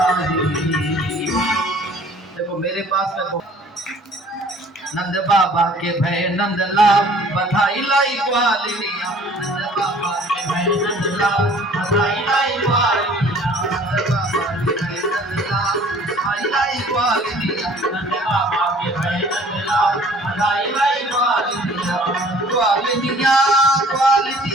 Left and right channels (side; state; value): both; normal; correlation 0.52